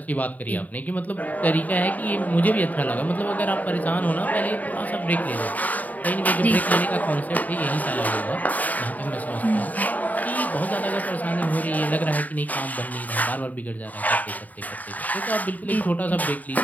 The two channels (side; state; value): right; late; 0.077 ms